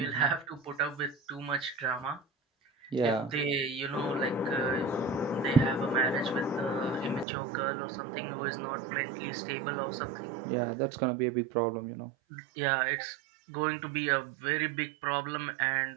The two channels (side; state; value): left; drops out; at 7.2 s